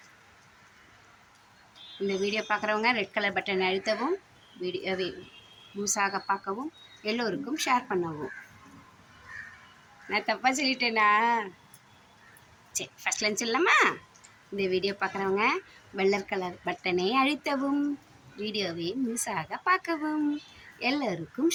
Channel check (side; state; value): both; identical; correlation 1.00